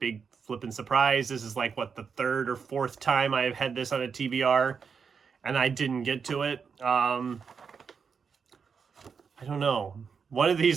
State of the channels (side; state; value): left; quieter; 6.0 dB